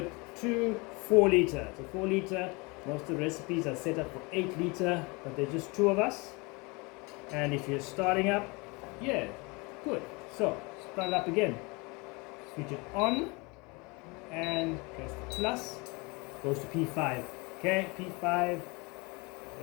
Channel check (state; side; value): quieter; right; 27.4 dB